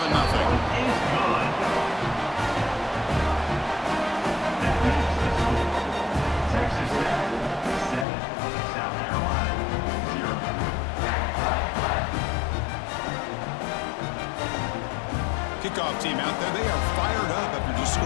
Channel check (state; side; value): drops out; right; at 8.1 s